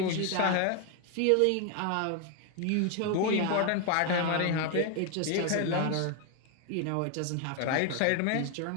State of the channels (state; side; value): different; both; correlation 0.01